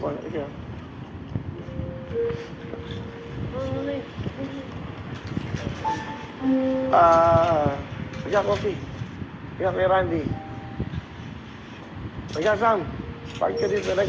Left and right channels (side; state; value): both; identical; correlation 1.00